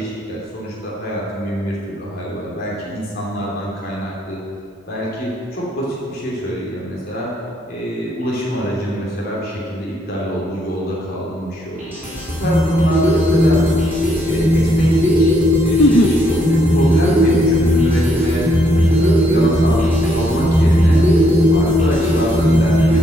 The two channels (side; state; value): both; normal; correlation 0.72